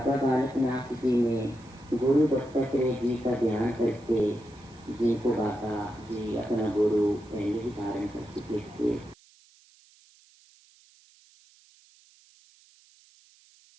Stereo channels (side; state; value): right; noise; hiss, 29 dB below the sound